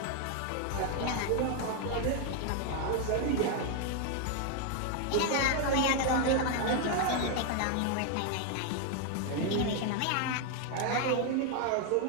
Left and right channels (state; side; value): different; both; correlation 0.01